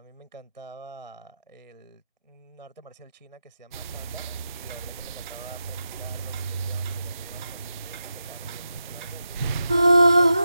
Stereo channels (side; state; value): both; inverted; correlation -0.89